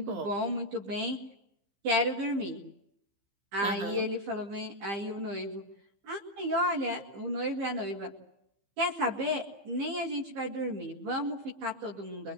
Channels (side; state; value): left; late; 15 ms